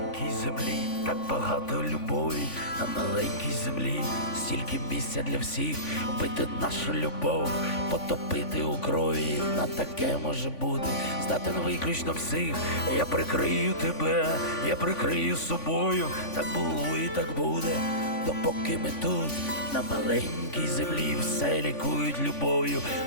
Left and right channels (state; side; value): late; right; 3.5 ms